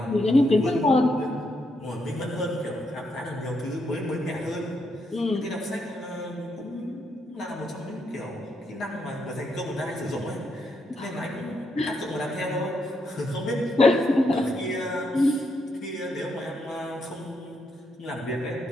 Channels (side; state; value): both; normal; correlation 0.79